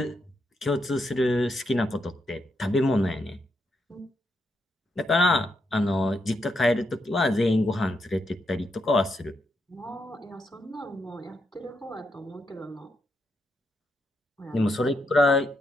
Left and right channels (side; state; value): both; normal; correlation 0.81